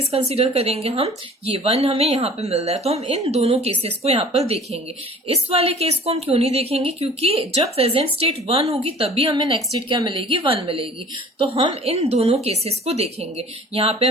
कंसीडर करेंगे, हम ये 1 हमें यहाँ पे मिल रहा है, तो हम इन दोनों केसेस को यहाँ पर देखेंगे। इस वाले केस को हम क्यों नहीं देखेंगे, क्योंकि जब प्रेजेंट स्टेट 1 होगी तभी हमें नेक्स्ट स्टेट क्या मिलेगी, 1 मिलेगी। तो हम इन दोनों केसेस को देखेंगे। यहाँ पे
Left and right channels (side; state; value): both; normal; correlation 0.47